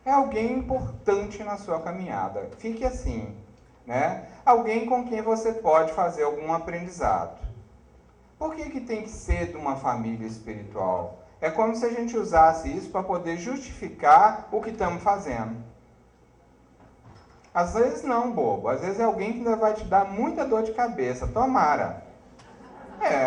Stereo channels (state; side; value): identical; both; correlation 1.00